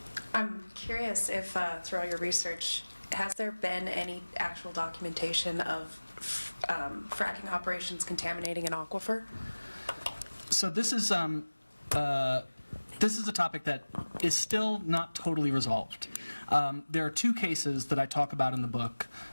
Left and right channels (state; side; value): inverted; both; correlation -1.00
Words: I'm curious if through all your research, has there been any actual documentation of fracking operations contaminating an aquifer? So this is a topic that is still not totally resolved. There are two cases that I talk about in the book.